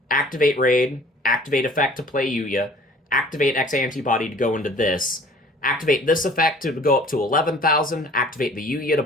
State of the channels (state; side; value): normal; both; correlation 0.50